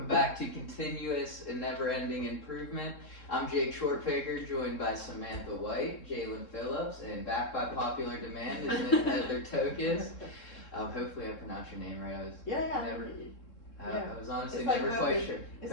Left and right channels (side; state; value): right; late; 3.7 ms